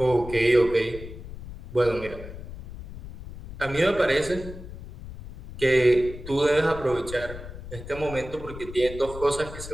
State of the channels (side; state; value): left; noise; rumble, 12 dB below the sound